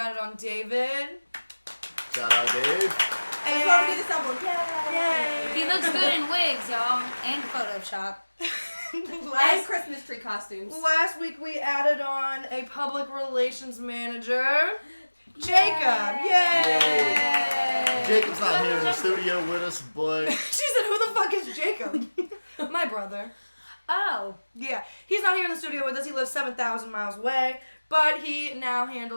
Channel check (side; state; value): both; inverted; correlation -1.00